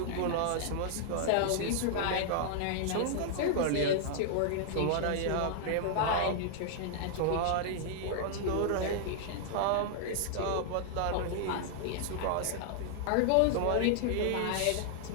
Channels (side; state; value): both; different; correlation -0.01